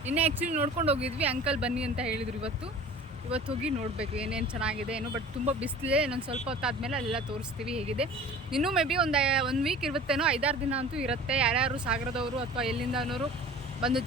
ನಿನ್ನೆ ಆ್ಯಕ್ಚುಲಿ ನೋಡ್ಕೊಂಡು ಹೋಗಿದ್ವಿ, ಅಂಕಲ್ ಬನ್ನಿ ಅಂತ ಹೇಳಿದ್ರು. ಇವತ್ತು ಹೋಗಿ ನೋಡಬೇಕು ಏನೇನು ಚೆನ್ನಾಗಿದೆ ಏನೋ. ಬಟ್ ತುಂಬ ಬಿಸಿಲಿದೆ, ಇನ್ನೊಂದು ಸ್ವಲ್ಪ ಹೊತ್ತಾದ್ಮೇಲೆ ಅಲ್ಲೆಲ್ಲ ತೋರಿಸ್ತೀವಿ ಹೇಗಿದೆ. ಇನ್ನೂ ಮೇ ಬಿ ಒಂದು ವೀಕ್ ಇರುತ್ತೇನೋ, 5-6 ದಿನ ಅಂತೂ ಇರುತ್ತೆ. ಯಾರ್ಯಾರು ಸಾಗರದವರು ಅಥವಾ ಎಲ್ಲಿಂದನವರು ಬಂದು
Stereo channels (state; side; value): normal; both; correlation 0.43